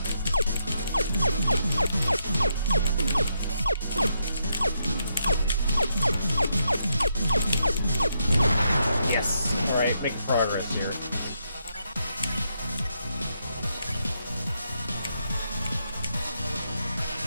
Yes. Alright, making progress here.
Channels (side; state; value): both; inverted; correlation -0.79